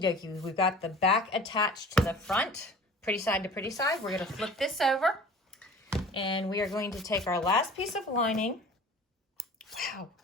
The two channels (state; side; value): normal; both; correlation 0.43